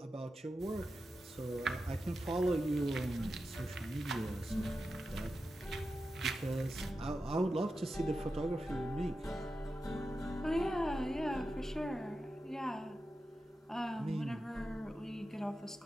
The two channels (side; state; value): both; normal; correlation 0.91